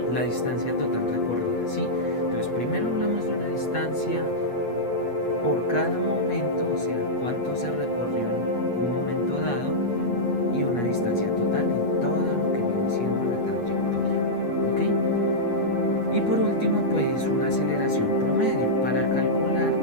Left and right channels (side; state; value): right; late; 8.4 ms